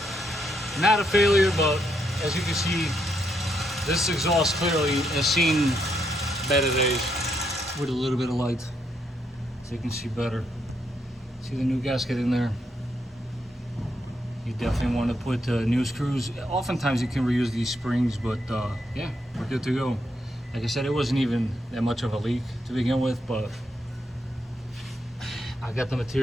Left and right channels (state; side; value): normal; both; correlation 0.78